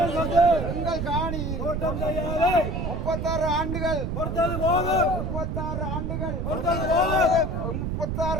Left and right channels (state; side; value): noise; right; rumble, 2 dB below the sound